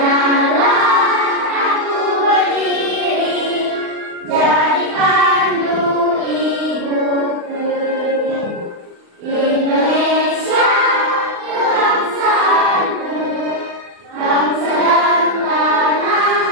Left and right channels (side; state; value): left; late; 39 ms